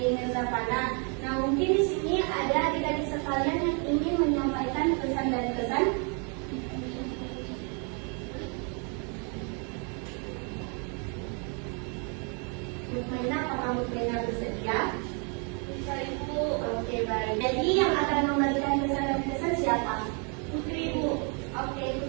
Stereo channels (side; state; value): left; quieter; 37.5 dB